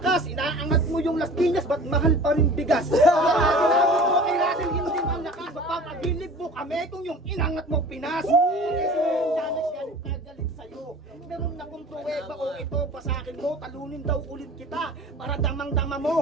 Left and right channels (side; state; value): both; normal; correlation 0.42